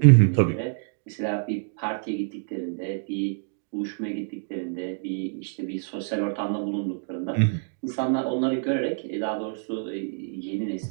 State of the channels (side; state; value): left; silent; digital silence